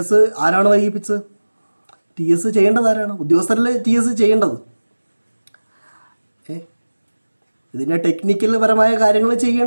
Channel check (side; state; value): both; inverted; correlation -1.00